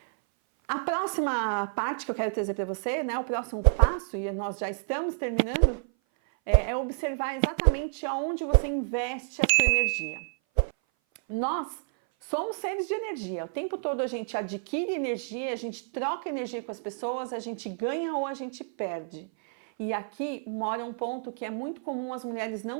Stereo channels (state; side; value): silent; left; 57 dB below the other